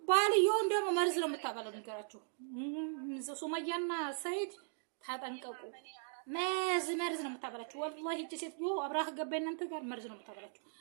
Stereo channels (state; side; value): silent; left; digital silence